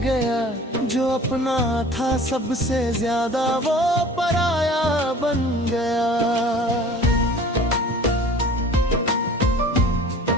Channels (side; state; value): both; normal; correlation 0.45